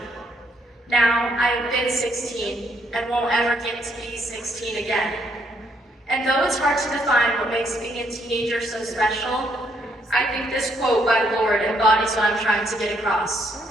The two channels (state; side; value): normal; both; correlation 0.72